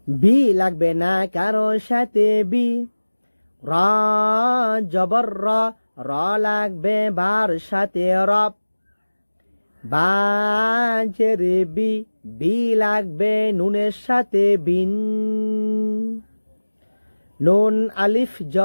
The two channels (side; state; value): both; inverted; correlation -1.00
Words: বি লাগবে না কারোর সাথে বি, রা জবর র লাগবে বার সাথে রব। বা জের বি লাগবে নুনের সাথে বিন। নুন আলিফ